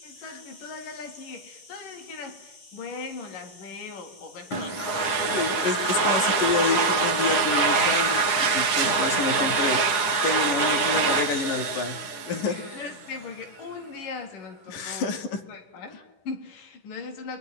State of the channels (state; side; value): late; right; 10 ms